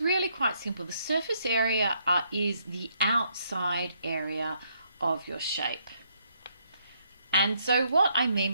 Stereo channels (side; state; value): both; inverted; correlation -0.72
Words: really quite simple. The surface area is the outside area of your shape. And so what I mean